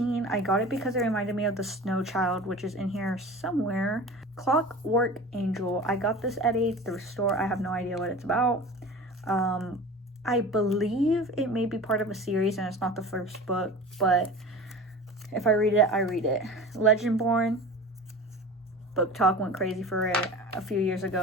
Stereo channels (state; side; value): normal; both; correlation 0.36